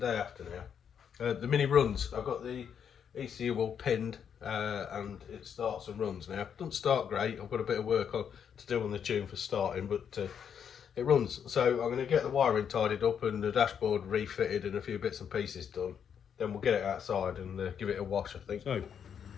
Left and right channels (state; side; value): quieter; right; 7.9 dB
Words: after now. The Mini runs. I've got the ECU all pinned, and it starts and runs now. It doesn't start great. I've got a bit of work to do on the tune for starting, but it runs. So I'm going to get the wiring tidied up and the dashboard refitted and a few bits and pieces done. Then we'll get it outside and give it a wash, I think. So,